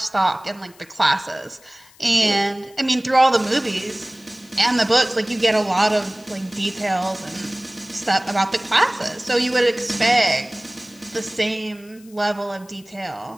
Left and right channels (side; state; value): left; noise; hiss, 26 dB below the sound